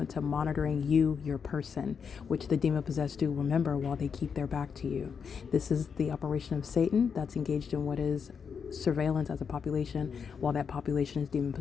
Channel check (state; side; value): quieter; right; 6.4 dB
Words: to monitoring you, your person, which the demon-possessed do, remember, while they keep their back to you. This is the operation of Satan that's engaged in what is surveillance as a population while that population is